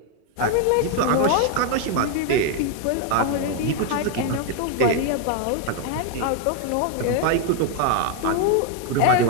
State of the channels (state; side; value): different; both; correlation 0.01